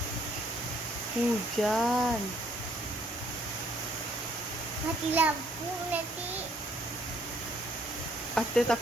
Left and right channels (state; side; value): normal; both; correlation 0.64